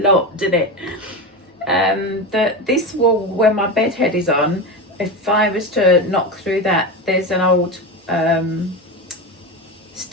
didn't it? This wall where my bed head is on, if I was to knock through that, there's an old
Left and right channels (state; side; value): normal; both; correlation 0.20